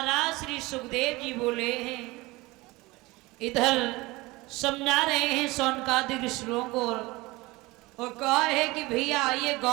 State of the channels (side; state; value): left; quieter; 21.8 dB